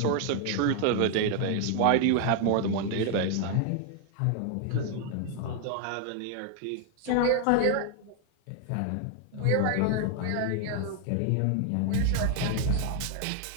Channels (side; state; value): both; different; correlation 0.00